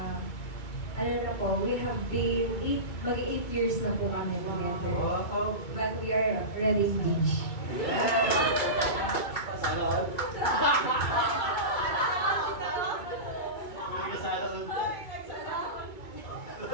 ano na po, we have been 8 years na po kami together. Wow. But we are already engaged. Sana all. May kasala all.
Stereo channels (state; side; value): late; right; 2.3 ms